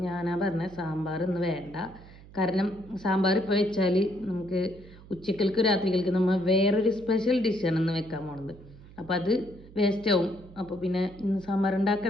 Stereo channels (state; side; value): noise; right; hum, 20 dB below the sound